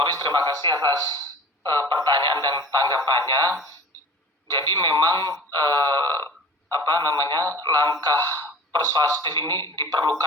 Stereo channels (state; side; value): normal; both; correlation 0.41